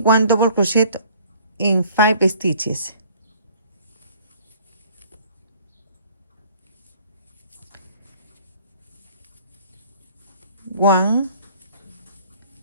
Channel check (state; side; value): inverted; both; correlation -0.55